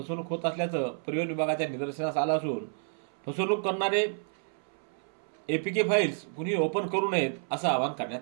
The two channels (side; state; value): left; silent; 58 dB below the other